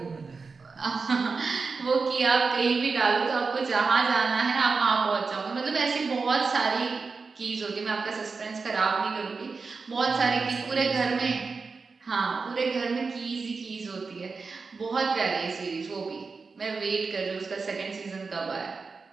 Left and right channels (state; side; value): quieter; left; 4.6 dB